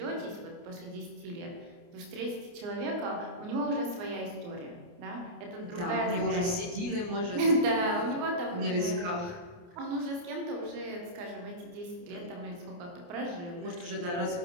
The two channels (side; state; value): left; late; 29 ms